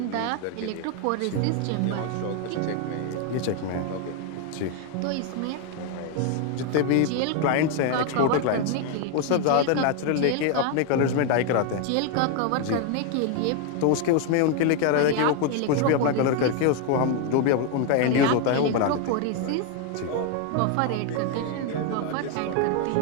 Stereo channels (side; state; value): both; different; correlation 0.01